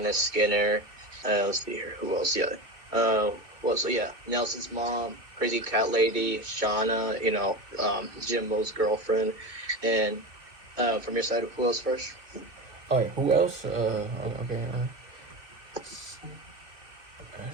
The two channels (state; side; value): late; left; 2.5 ms